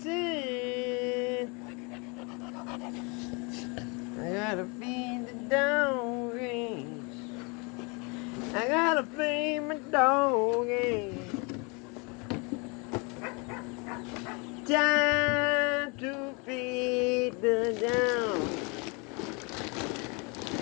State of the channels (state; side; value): quieter; right; 31.0 dB